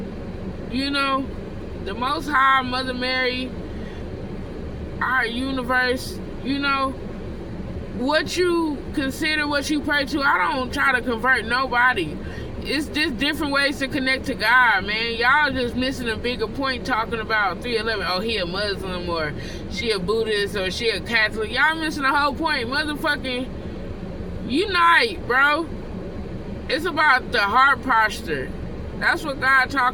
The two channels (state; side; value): identical; both; correlation 1.00